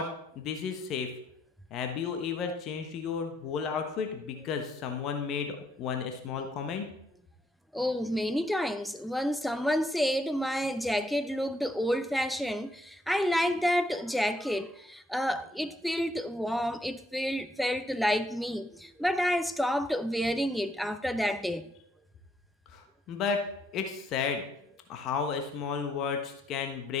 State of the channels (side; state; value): both; normal; correlation 0.73